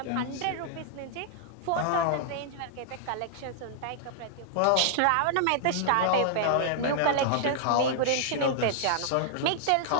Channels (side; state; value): both; different; correlation -0.01